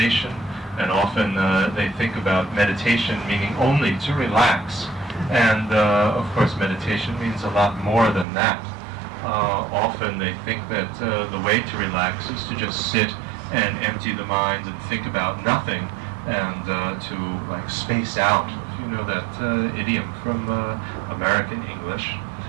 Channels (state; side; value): drops out; left; at 8.2 s